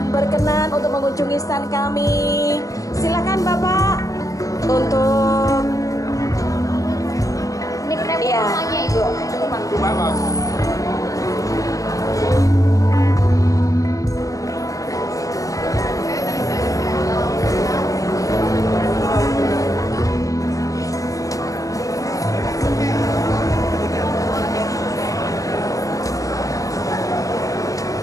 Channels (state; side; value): late; right; 0.16 ms